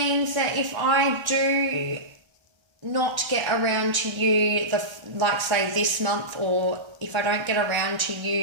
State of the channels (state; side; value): late; left; 1.3 ms